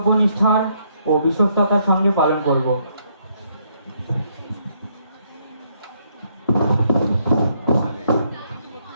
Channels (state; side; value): inverted; both; correlation -0.72